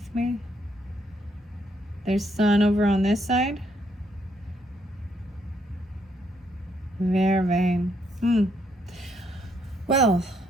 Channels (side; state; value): both; normal; correlation 0.73